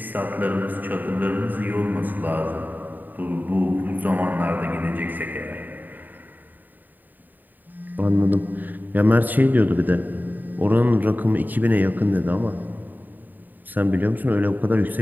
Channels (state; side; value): late; left; 0.088 ms